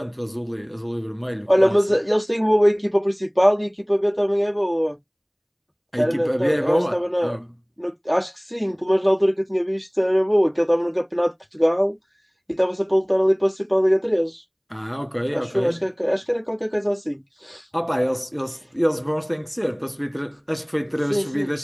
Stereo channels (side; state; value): both; identical; correlation 1.00